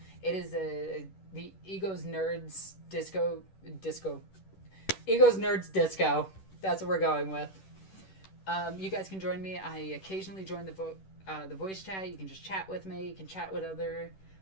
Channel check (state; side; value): late; right; 10 ms